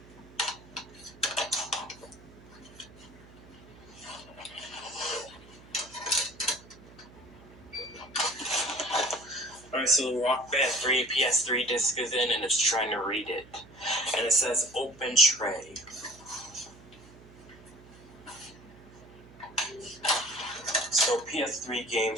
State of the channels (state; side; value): noise; right; hum, 22 dB below the sound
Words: Alright, so Rock Band 3 PS3 disc is in and it's trying to read it. And it says open tray. So PS3